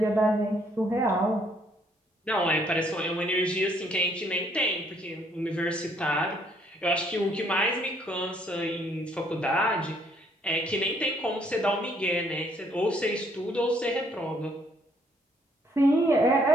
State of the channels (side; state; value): both; normal; correlation 0.67